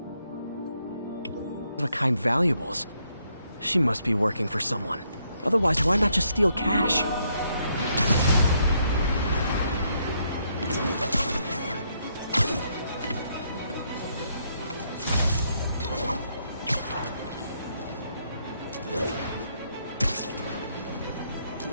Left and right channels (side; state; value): both; inverted; correlation -0.74